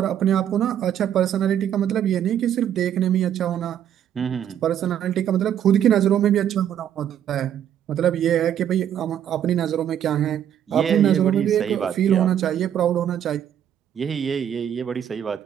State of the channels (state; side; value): quieter; left; 9.9 dB